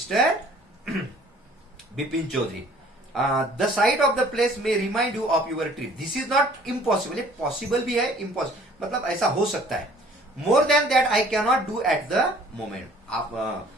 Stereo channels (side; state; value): both; normal; correlation 0.54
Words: Bipin Chaudhary. The sight of the place may remind you of your trip. This is not impossible. Possible भी है, इम्पॉसिबल मतलब ऐसा हो सकता है. More than that I can not do at the moment.